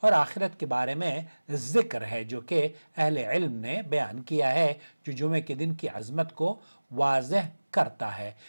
آخرت کے بارے میں ذکر ہے، جو کہ اہل علم نے بیان کیا ہے، جو جمعے کے دن کی عظمت کو واضح کرتا ہے۔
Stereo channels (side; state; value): both; inverted; correlation -1.00